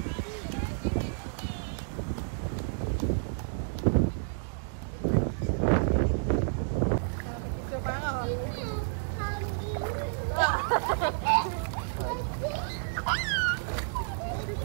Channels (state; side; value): silent; left; digital silence